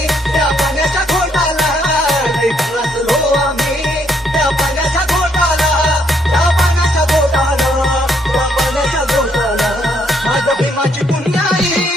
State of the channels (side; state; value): both; normal; correlation 0.71